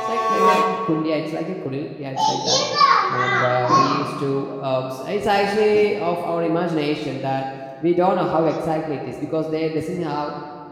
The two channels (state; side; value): identical; both; correlation 1.00